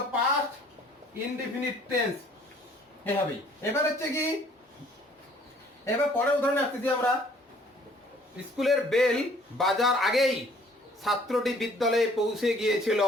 পাস্ট ইনডিফিনিট টেন্স এভাবেই। এবার হচ্ছে কি, এবার পরের উদাহরণে আসতেছি আমরা, স্কুলের বেল বাজার আগেই ছাত্রটি বিদ্যালয়ে পৌঁছে গিয়েছিল।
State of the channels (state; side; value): normal; both; correlation 0.57